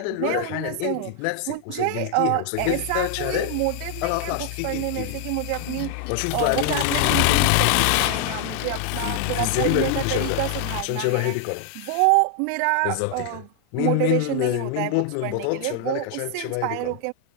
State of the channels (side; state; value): both; different; correlation 0.00